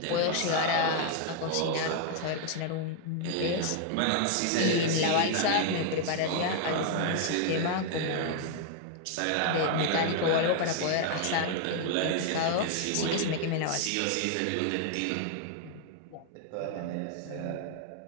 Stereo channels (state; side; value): different; both; correlation 0.00